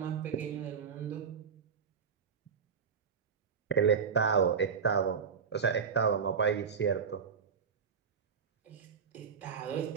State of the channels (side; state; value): left; quieter; 6.3 dB